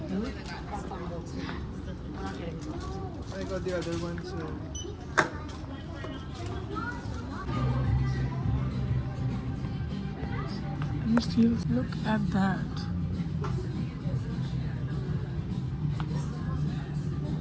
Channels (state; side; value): identical; both; correlation 1.00